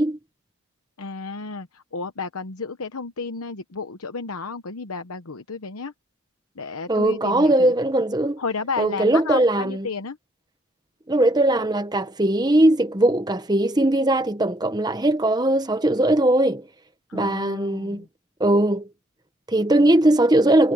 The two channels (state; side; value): normal; both; correlation 0.68